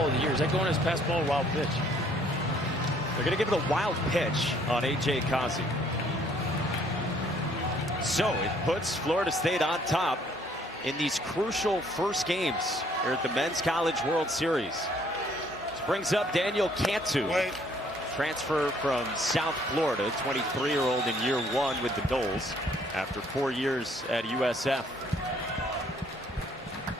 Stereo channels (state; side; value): normal; both; correlation 0.63